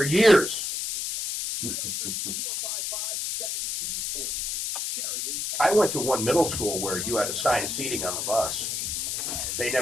years. I went to one middle school where you had assigned seating on the bus. They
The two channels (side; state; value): left; noise; hiss, 2 dB below the sound